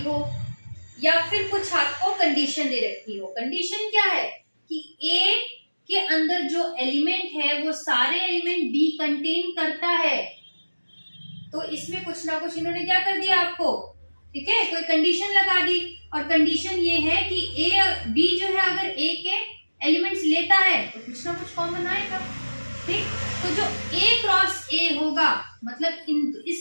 हो या फिर कुछ आपको कंडीशन दे रखी हो। कंडीशन क्या है कि A के अंदर जो एलिमेंट है वो सारे एलिमेंट B कंटेन करता है। तो इसमें कुछ ना कुछ इन्होंने क्या कर दिया आपको, ठीक है, कोई कंडीशन लगा दी। और कंडीशन ये है कि A B जो है अगर A के एलिमेंट्स लेता है तो कुछ ना कुछ कॉमन आएगा। ठीक, तो जो A क्रॉस A होगा मतलब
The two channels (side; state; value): both; inverted; correlation -1.00